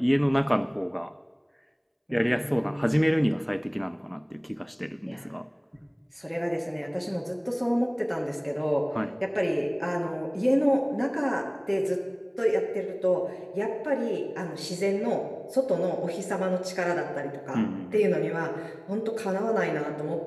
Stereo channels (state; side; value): identical; both; correlation 1.00